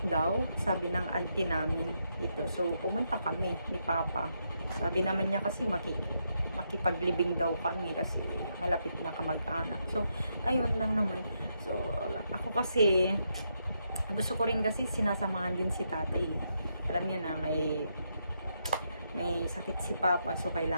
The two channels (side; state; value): both; inverted; correlation -0.80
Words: daw, sabi ng auntie namin ito. So, pumunta kami ni Papa. Sabi naman niya kasi makipaglibing daw kami kasi malapit na kamag-anak. So, ayun lang naman. So, ako kasi, gusto ko rin kasi sinasamahan din si tatay. Alam niyo na, may sakit si Papa, so